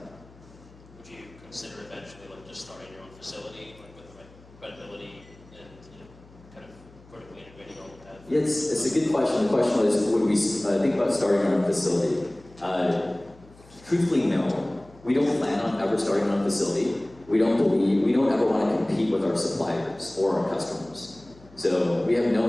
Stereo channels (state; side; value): noise; left; hum, 24 dB below the sound